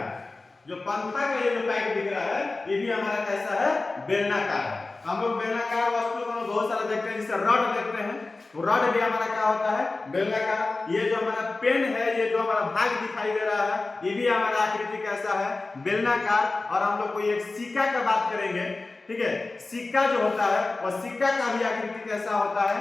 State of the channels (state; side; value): quieter; right; 3.4 dB